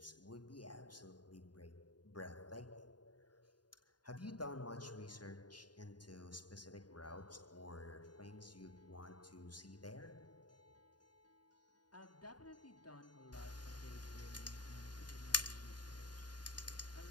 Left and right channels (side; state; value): right; late; 0.70 ms